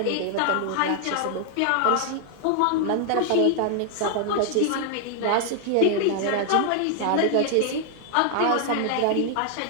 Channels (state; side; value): different; both; correlation 0.00